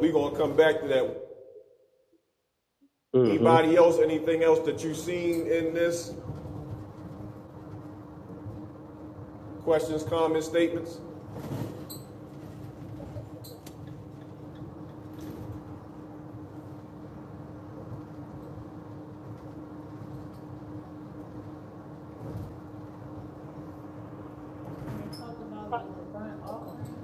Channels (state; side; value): identical; both; correlation 1.00